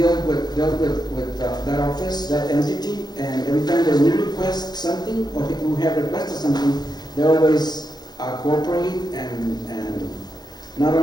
with that office, that entity, and every time that we request something, or people who have requested something, they always cooperate and not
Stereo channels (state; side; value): late; right; 0.20 ms